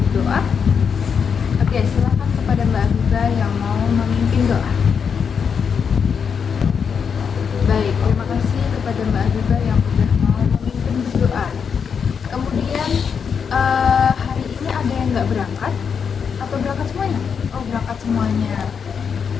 doa? Oke, silakan kepada Mbak Afiza yang mau memimpin doa. Baik, terima kasih kepada Mbak Afiza yang sudah mau memimpin doa. Kemudian hari ini ada yang nggak berangkat? Atau berangkat semuanya? Oh, berangkat semuanya.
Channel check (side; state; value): right; quieter; 6.6 dB